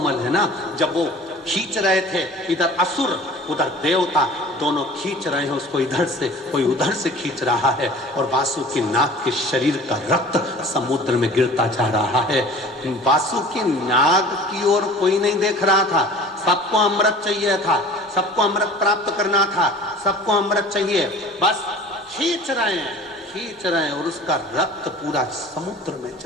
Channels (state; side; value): normal; both; correlation 0.44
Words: है ना। जब वो खींच रहे थे, इधर असुर उधर देवता, दोनों खींच रहे हैं उसको, इधर से कोई उधर से खींच रहा है, और वासुकी नाग के शरीर का रक्त समुद्र में गिरता जा रहा है। वासुकी नाग की ओर कोई नहीं देख रहा था, सबको अमृत चाहिए था, सबको अमृत प्राप्त करना था, सबको अमृत चाहिए, बस खींच रहे हैं, खींच रहे हैं, और उसका रक्त पूरा समुद्र में